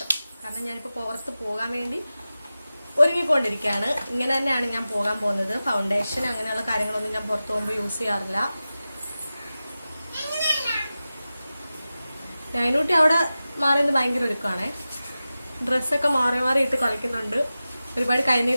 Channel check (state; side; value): inverted; both; correlation -0.95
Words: കാരണം ഞാനിപ്പോ പുറത്ത് പോകാൻ വേണ്ടി ഒരുങ്ങിക്കൊണ്ടിരിക്കുകയാണ്. ഇങ്ങനെ തന്നെയാണ് ഞാൻ പോകാൻ പോകുന്നത്. ഫൗണ്ടേഷൻ അങ്ങനെയുള്ള കാര്യങ്ങളൊന്നും ഞാൻ പുറത്ത് പോകുമ്പോൾ യൂസ് ചെയ്യാറില്ല. നൈനൂട്ടി അവിടെ മാറിയത് ഭയങ്കര ഒരുക്കമാണേ. ഡ്രസ്സൊക്കെ മാറി മാറി ഇട്ട് കളിക്കുന്നുണ്ട്. ഒരുപാട്